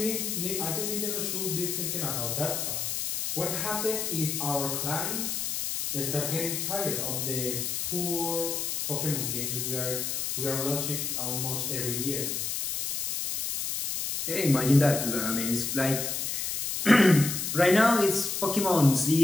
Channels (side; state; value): left; noise; hiss, 2 dB below the sound